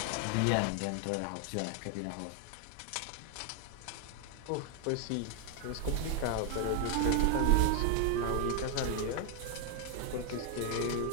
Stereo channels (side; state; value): both; different; correlation 0.00